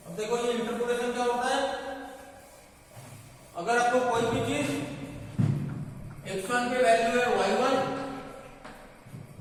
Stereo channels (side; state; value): both; identical; correlation 1.00